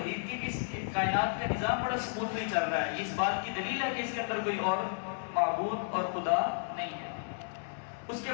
کی کہ اس کائنات کا نظام بڑا سموتھلی چل رہا ہے. یہ اس بات کی دلیل ہے کہ اس کے اندر کوئی اور معبود اور خدا نہیں ہے. اس کے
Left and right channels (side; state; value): right; silent; 56 dB below the other